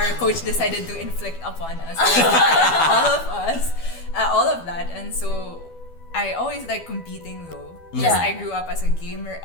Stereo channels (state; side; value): late; right; 12 ms